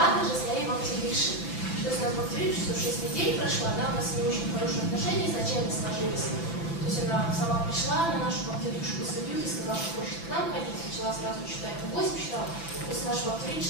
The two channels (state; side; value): late; right; 5.9 ms